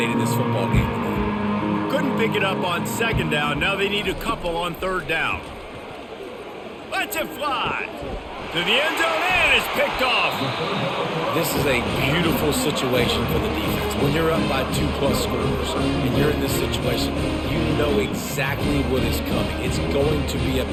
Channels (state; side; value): identical; both; correlation 1.00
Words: this football game. Couldn't pick it up on 2nd down. Now they need a couple on 3rd down. Lets it fly. To the end zone, and it's picked off. This is a beautiful situation for the defense. When you're up by 2+ scores and you're in this situation, you know exactly what is coming. It's going to be a